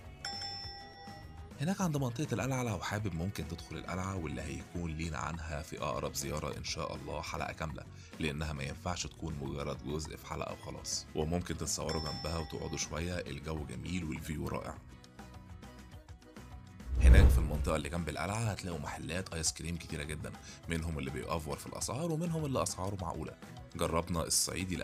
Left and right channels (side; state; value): both; identical; correlation 1.00